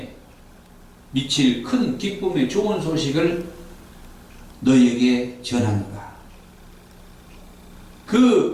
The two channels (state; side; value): identical; both; correlation 1.00